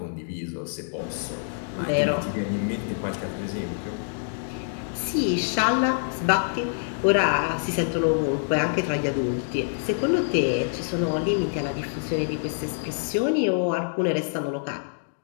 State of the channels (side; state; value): right; silent; digital silence